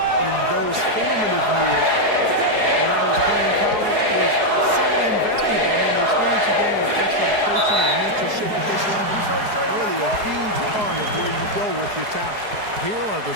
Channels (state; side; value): late; left; 4.8 ms